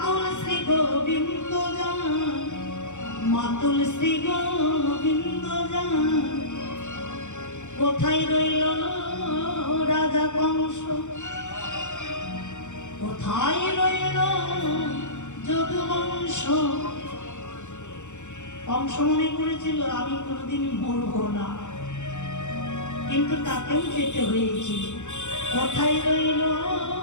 শ্রী গোবিন্দ যার, মাতুল শ্রী গোবিন্দ যার। কোথায় রইল রাজা কংস, কোথায় রইল যদুবংশ। কংস মনে করেছিল আমি কোনোদিন মরব না, কিন্তু তাকেও যেতে হয়েছিল। কোথায় রইল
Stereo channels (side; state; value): right; late; 0.84 ms